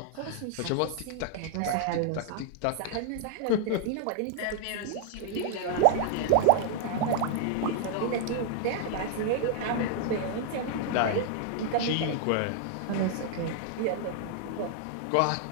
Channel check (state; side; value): different; both; correlation -0.01